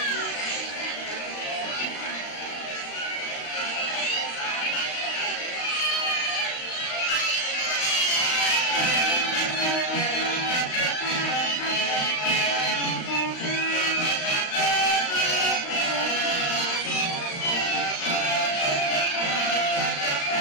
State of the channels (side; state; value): right; late; 35 ms